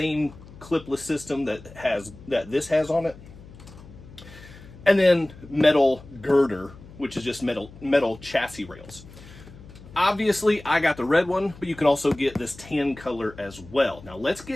clipless system that this has on it. And then metal girder, which is just metal chassis rails. Obviously, I got the red one, but you can also get this tan color as well. Now, let's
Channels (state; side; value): noise; left; hum, 19 dB below the sound